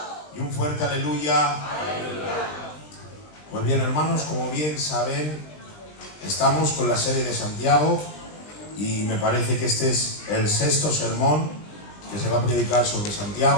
Y un fuerte aleluya. Pues bien, hermanos, como bien saben, estamos con la serie de Santiago y me parece que este es el sexto sermón que se va a predicar sobre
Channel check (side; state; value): right; late; 20 ms